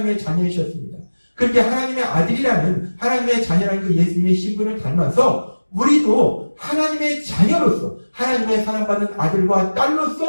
자녀이셨습니다. 그렇게 하나님의 아들이라는 하나님의 자녀라는 그 예수님의 신분을 닮아서 우리도 하나님의 자녀로서 하나님의 사랑받는 아들과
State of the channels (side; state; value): both; inverted; correlation -1.00